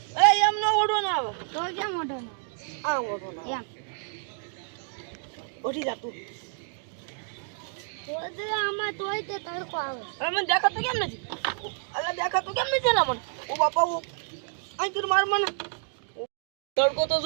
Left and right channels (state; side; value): silent; left; 59 dB below the other